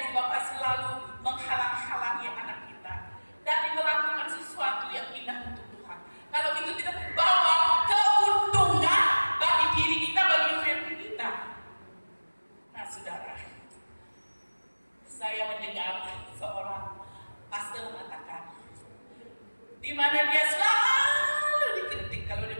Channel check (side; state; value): both; inverted; correlation -1.00